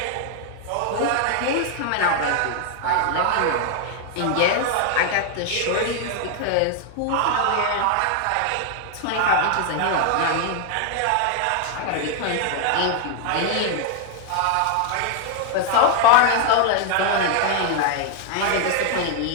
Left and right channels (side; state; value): both; different; correlation 0.00